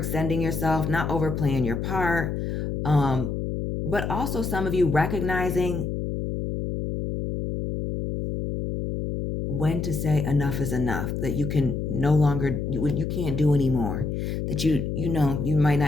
yourself, not overplaying your part, but also some of you recognizing when to say enough is enough, that you can no longer, you can't do anymore, that you know, you might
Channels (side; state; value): left; noise; hum, 3 dB below the sound